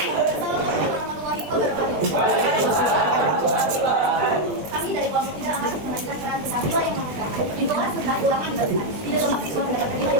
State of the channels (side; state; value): left; late; 20 ms